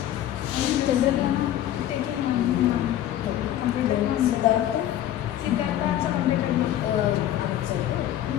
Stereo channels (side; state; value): right; quieter; 12.2 dB